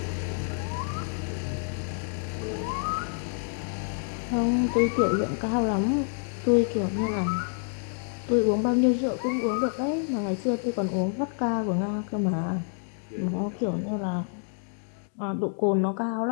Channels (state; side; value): silent; right; 59 dB below the other